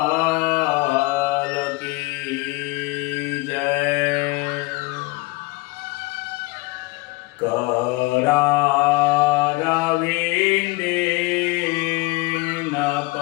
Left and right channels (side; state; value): right; quieter; 23.5 dB